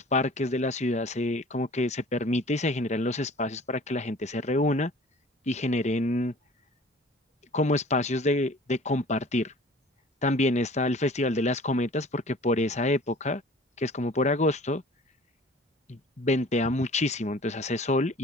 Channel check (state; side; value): normal; both; correlation 0.48